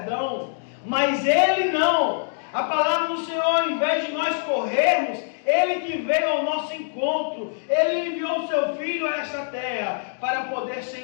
mas Ele não. A palavra do Senhor, ao invés de nós corrermos, Ele que veio ao nosso encontro, Ele enviou o seu Filho a esta terra, para poder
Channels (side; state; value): right; silent; digital silence